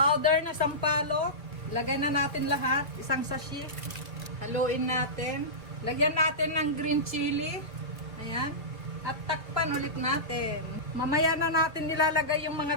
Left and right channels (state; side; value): late; left; 1.8 ms